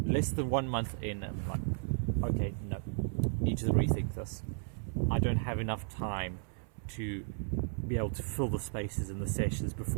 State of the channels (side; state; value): left; silent; 55 dB below the other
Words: less than 1 month in, I'm like, okay, no, need to rethink this. I don't have enough time to be able to fill the spaces in the sessions